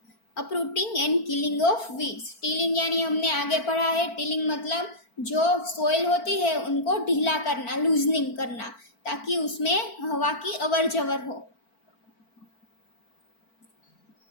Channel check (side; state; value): right; late; 4.5 ms